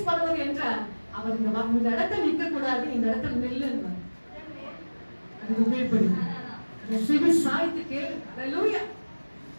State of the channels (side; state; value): both; inverted; correlation -1.00